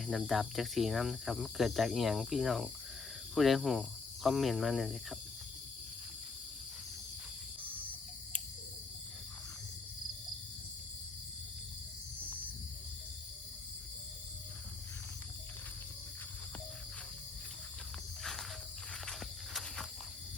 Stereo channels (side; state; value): right; quieter; 4.4 dB